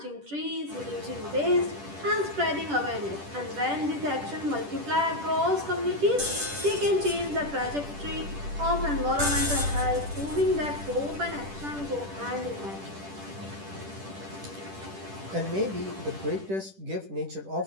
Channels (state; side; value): late; left; 10 ms